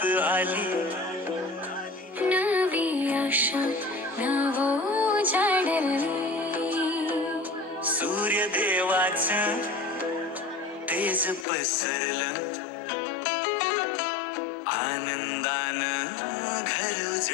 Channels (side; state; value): right; drops out; at 11.5 s